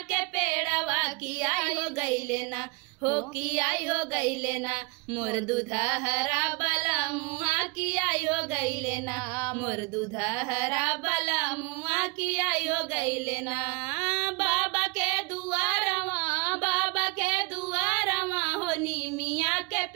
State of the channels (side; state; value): left; quieter; 28.3 dB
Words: के पेड़वा की आई हो गईले ना, हो की आई हो गईले ना, मोर दूधा हरा बला मुआ की आई हो गईले ना, मोर दूधा हरा बला मुआ की आई हो गईले ना। बाबा के दुआरवा हो नीमिया के